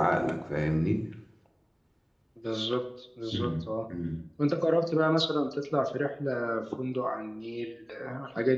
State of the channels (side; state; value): both; identical; correlation 1.00